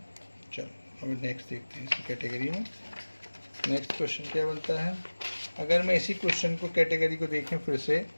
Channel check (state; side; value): inverted; both; correlation -1.00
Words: चलो अब नेक्स्ट देखते हैं इसी कैटेगरी में। नेक्स्ट क्वेश्चन क्या बनता है। अगर मैं इसी क्वेश्चन को कैटेगरी को देखें फिर से,